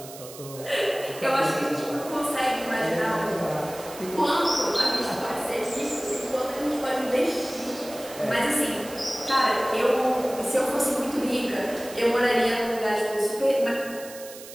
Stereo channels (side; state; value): right; noise; hiss, 15 dB below the sound